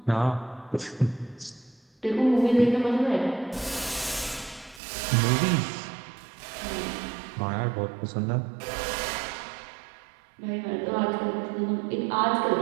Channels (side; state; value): left; drops out; at 4.8 s